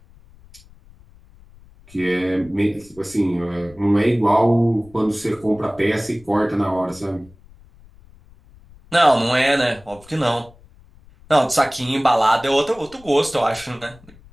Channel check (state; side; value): noise; left; rumble, 25 dB below the sound